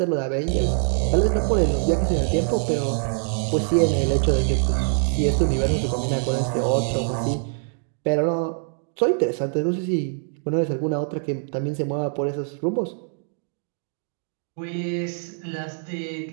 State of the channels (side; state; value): left; silent; digital silence